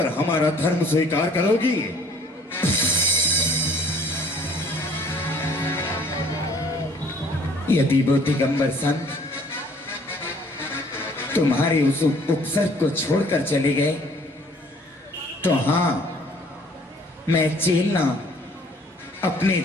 हमारा धर्म स्वीकार करोगी? यदि वो दिगंबर संत तुम्हारे उस उपसर्ग को छोड़कर चले गए तो हां, मैं चेलना अपने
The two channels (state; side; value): normal; both; correlation 0.56